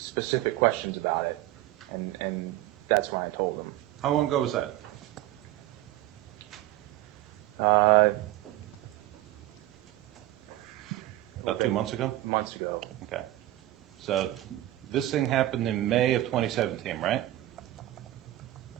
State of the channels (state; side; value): quieter; left; 15.5 dB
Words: questions about it, and that's when I told him. How long ago was that? About 2 months ago? Months ago. Okay. So this thing happened in May of 2017, right?